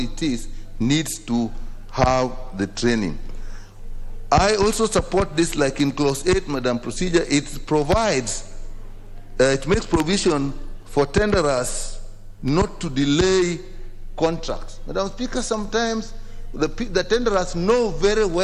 is, needs to have the training. I also support this, like in clause 8, Madam Procedure, it provides, it makes provision for tenderers not to delay contracts. Madam Speaker, sometimes the tenderers know very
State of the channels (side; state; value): both; identical; correlation 1.00